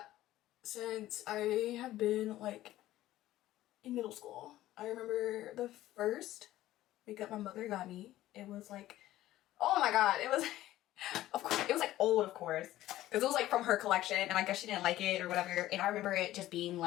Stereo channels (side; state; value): right; quieter; 14.9 dB